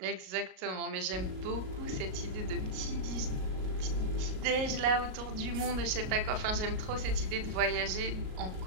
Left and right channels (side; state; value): left; late; 38 ms